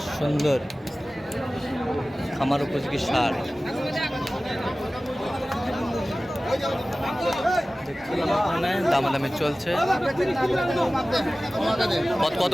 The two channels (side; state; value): both; normal; correlation 0.97